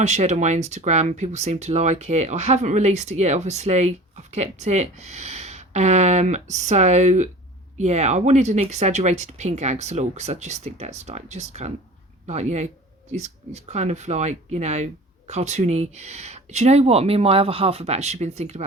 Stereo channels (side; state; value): both; normal; correlation 0.40